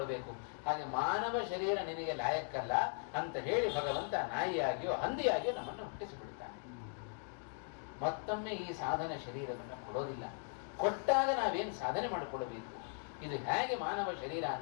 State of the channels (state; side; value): silent; right; 52 dB below the other